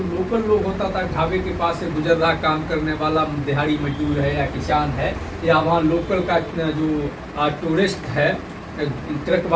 लोकल लोग होता था, ढाबे के पास से गुजर रहा काम करने वाला दिहाड़ी मजदूर है या किसान है या वहाँ लोकल का जो टूरिस्ट है, ट्रक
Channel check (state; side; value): identical; both; correlation 1.00